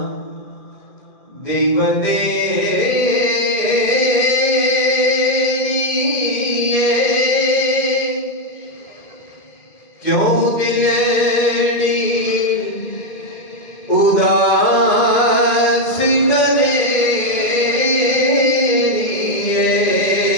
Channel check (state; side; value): late; right; 2.5 ms